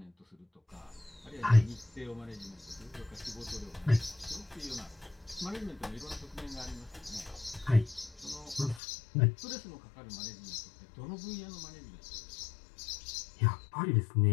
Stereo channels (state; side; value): drops out; right; at 8.8 s